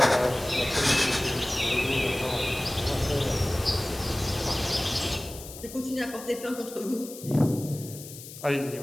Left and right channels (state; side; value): noise; left; hiss, 14 dB below the sound